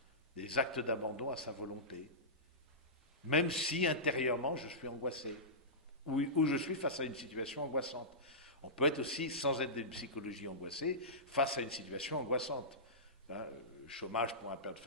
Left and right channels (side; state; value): both; normal; correlation -0.18